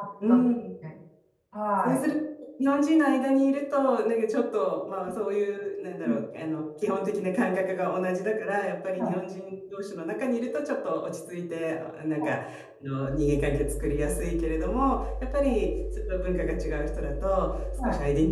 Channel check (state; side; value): identical; both; correlation 1.00